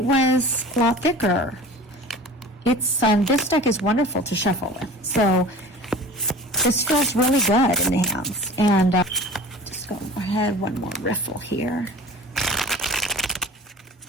was a lot thicker. This deck is wonderful to shuffle with. So this feels really good in the hands. And just go ahead, one more riffle here.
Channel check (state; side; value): normal; both; correlation 0.39